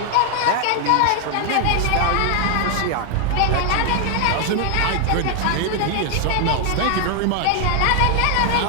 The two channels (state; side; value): different; both; correlation 0.00